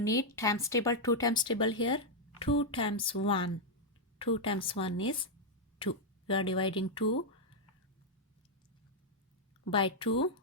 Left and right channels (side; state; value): both; normal; correlation -0.02